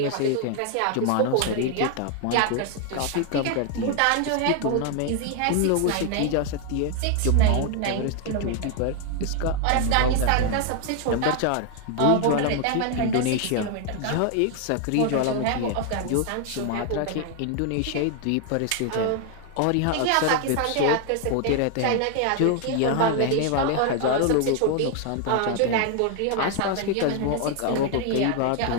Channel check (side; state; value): both; different; correlation 0.00